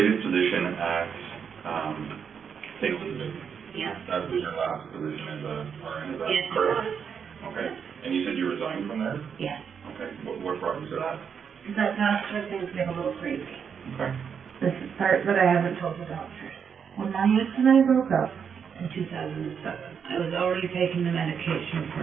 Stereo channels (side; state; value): left; quieter; 7.0 dB